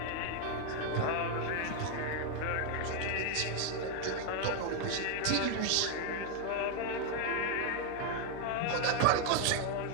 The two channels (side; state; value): both; different; correlation 0.01